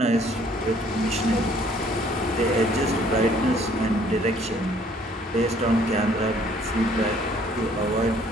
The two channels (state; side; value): normal; both; correlation 0.60